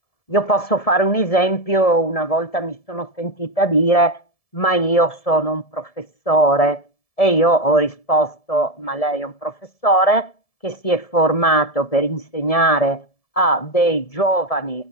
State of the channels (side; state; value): right; late; 1.7 ms